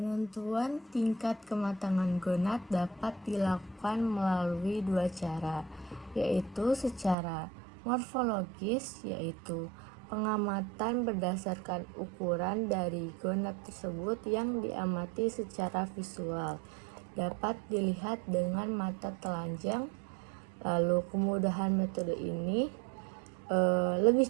tingkat kematangan gonad dapat dilakukan melalui dua cara, yaitu secara morfologis, yaitu pengamatan berdasarkan ukuran dari gonad tersebut yang diamati secara visual, dapat dilihat dengan mata telanjang. Lalu kemudahan metode ini lebih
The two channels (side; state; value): left; drops out; at 7.2 s